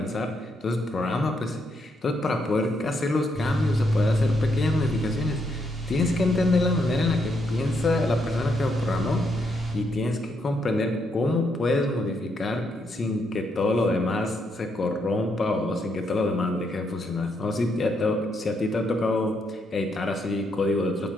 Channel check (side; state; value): both; normal; correlation 0.77